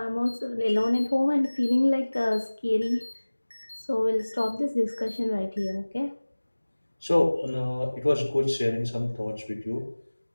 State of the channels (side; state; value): both; inverted; correlation -1.00